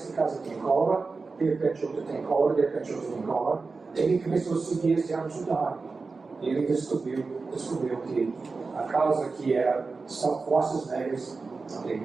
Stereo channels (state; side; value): quieter; left; 4.2 dB